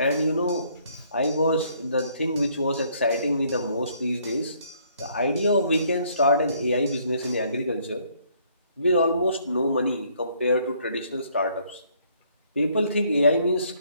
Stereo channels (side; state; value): both; inverted; correlation -0.66